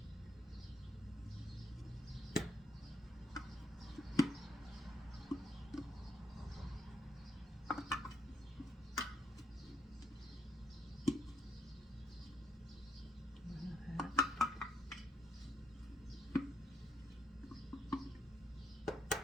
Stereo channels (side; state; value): both; normal; correlation 0.75